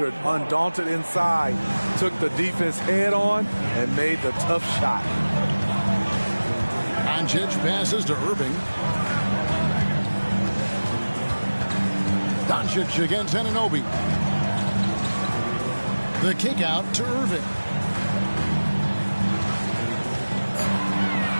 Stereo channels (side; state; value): both; inverted; correlation -1.00